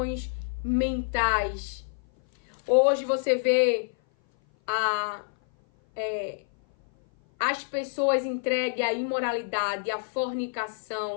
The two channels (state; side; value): silent; right; 56 dB below the other